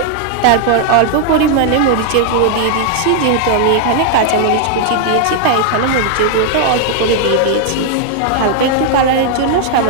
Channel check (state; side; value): different; both; correlation 0.00